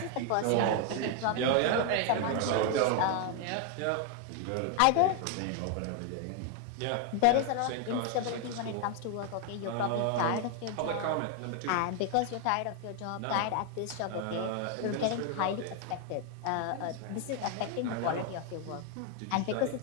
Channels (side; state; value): both; different; correlation 0.01